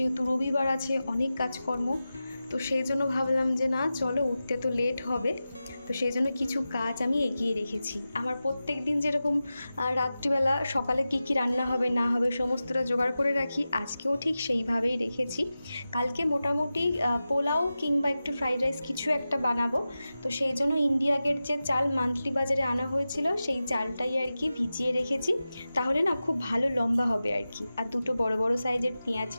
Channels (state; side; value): inverted; both; correlation -0.94